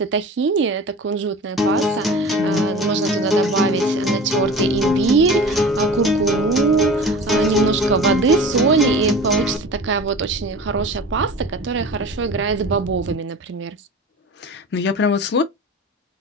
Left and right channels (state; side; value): normal; both; correlation 0.37